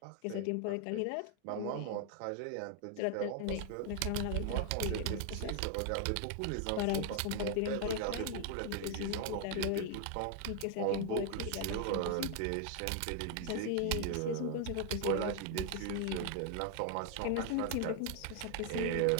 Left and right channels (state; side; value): different; both; correlation 0.00